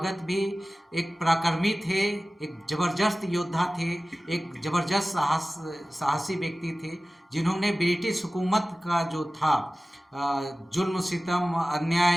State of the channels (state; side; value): normal; both; correlation 0.97